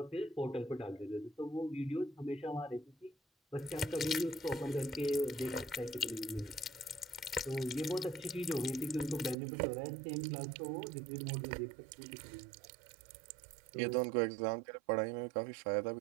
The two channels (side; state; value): left; drops out; at 9.3 s